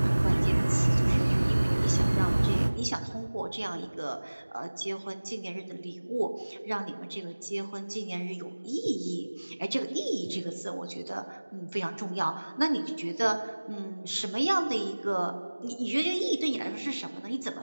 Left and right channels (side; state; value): both; inverted; correlation -1.00